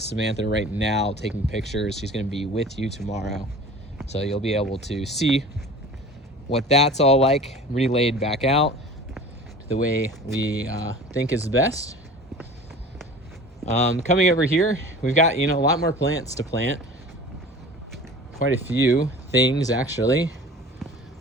Samantha right now taking pictures. She's gonna be with you tomorrow. So you'll be able to see what that's all like, relayed back out the way we think is best. Coming over here, we've got, a lot more plants to plant. Quite a few things, actually.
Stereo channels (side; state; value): both; normal; correlation 0.41